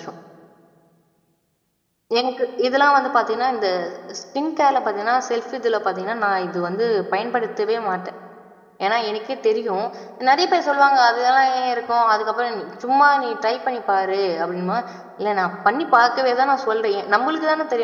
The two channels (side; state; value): both; identical; correlation 1.00